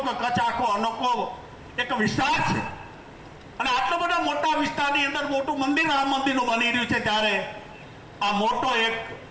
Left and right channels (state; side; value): identical; both; correlation 1.00